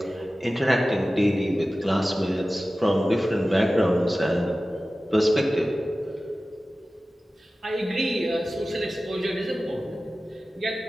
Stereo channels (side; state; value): both; normal; correlation 0.96